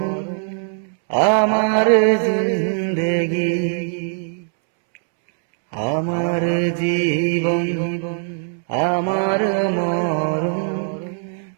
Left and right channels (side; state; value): left; silent; 65 dB below the other